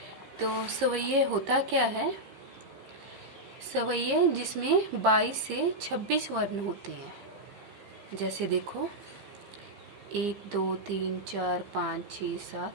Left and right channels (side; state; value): left; late; 15 ms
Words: तो सवैये होता क्या है? सवैये जिसमें 22 से 26 वर्ण होते हैं। जैसे देखो 1 2 3 4 5 6